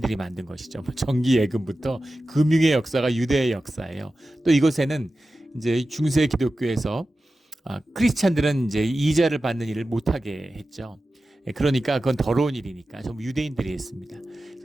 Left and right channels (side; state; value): both; normal; correlation 0.94